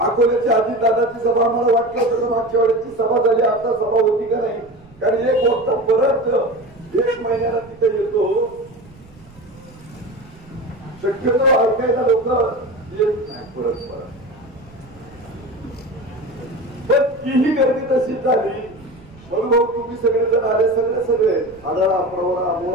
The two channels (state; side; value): noise; right; rumble, 24 dB below the sound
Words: अजितदादाची सभा आम्हाला वाटलं होतं मागच्या वेळेची सभा झाली, आता सभा होती का नाही. कारण एक वक्ता परत 1 महिन्याला तिथे येतो. शक्यतो ऐकायला लोक येत नाही परत. पण तीही गर्दी तशीच झाली. म्हणून तुम्ही सगळेजण आले, सगळे आढळा, प्रवरा,